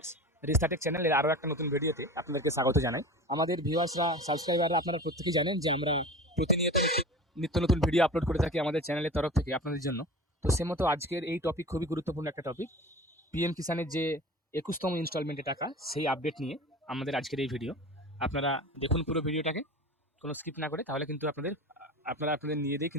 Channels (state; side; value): normal; both; correlation 0.34